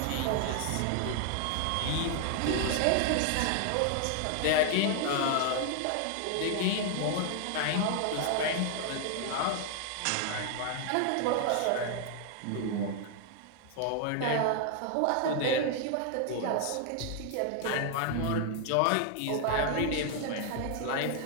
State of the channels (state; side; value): different; both; correlation 0.00